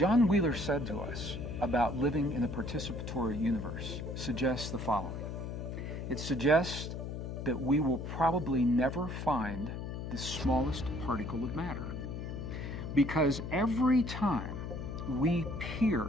Wheeler said to us about living in a participatory universe suggests the following. It suggests that we will probably never find the smallest particle of matter, because every time we peer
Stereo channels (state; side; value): noise; left; hum, 6 dB below the sound